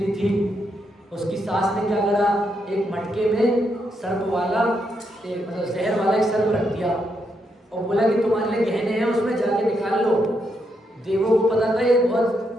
थी। उसकी सास ने क्या करा, एक मटके में सर्प वाला एक मतलब जहर वाला एक सर्प रख दिया और बोला कि तुम्हारे लिए गहने हैं, उसमें जाके निकाल लो। देवों को पता था ये बहुत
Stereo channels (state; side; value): normal; both; correlation 0.80